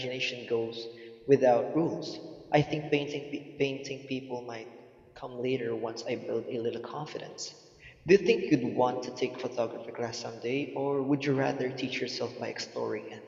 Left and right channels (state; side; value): identical; both; correlation 1.00